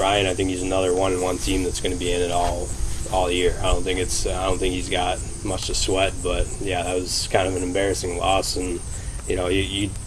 I think he's another 1-1 team that's going to be in it all year. I don't think he's got much to sweat. But yeah, that was kind of an embarrassing loss, and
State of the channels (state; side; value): identical; both; correlation 1.00